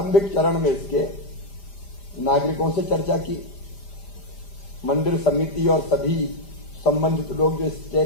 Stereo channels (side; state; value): right; late; 5.0 ms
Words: चरण में इसके नागरिकों से चर्चा की, मंदिर समिति और सभी संबंधित लोग जो